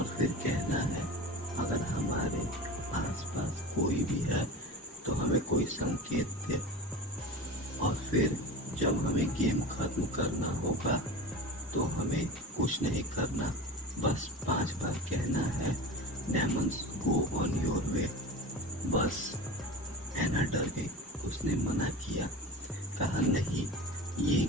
फिर कहना है अगर हमारे आसपास कोई भी है तो हमें कोई संकेत दे। और फिर जब हमें गेम खत्म करना होगा तो हमें कुछ नहीं करना, बस 5 बार कहना है diamonds go on your way. बस एना डर गई। उसने मना किया, कहा नहीं ये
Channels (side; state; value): both; normal; correlation 0.31